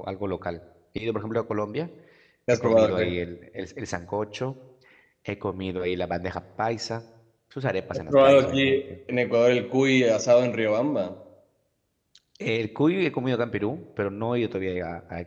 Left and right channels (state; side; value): identical; both; correlation 1.00